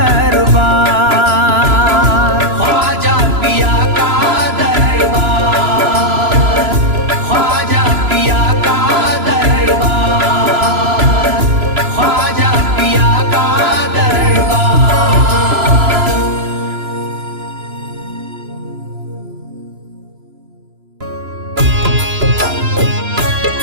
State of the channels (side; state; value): left; late; 3.0 ms